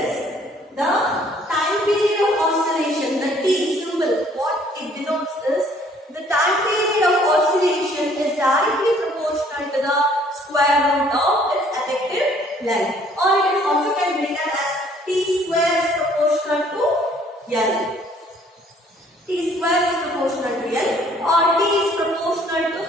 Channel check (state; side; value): normal; both; correlation 0.60